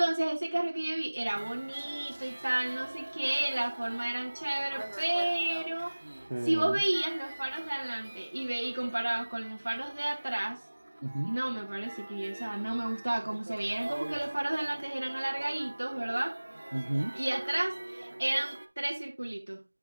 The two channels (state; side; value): inverted; both; correlation -1.00